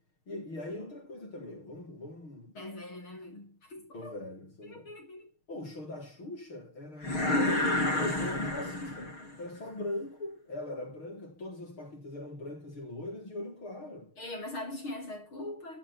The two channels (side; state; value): right; late; 6.5 ms